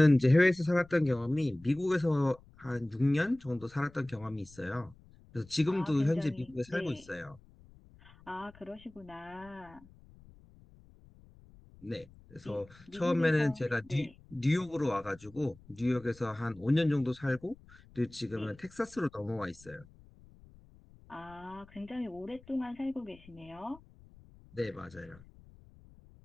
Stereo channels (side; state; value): left; noise; rumble, 24 dB below the sound